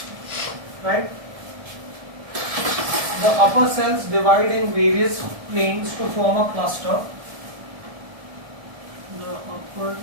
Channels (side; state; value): left; late; 1.7 ms